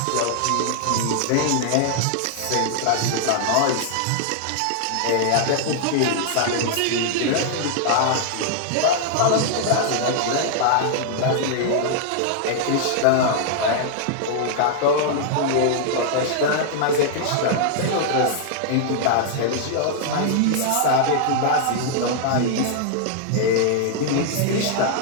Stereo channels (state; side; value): different; both; correlation -0.01